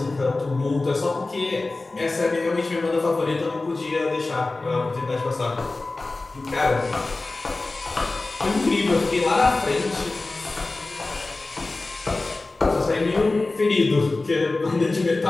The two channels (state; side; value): quieter; right; 3.3 dB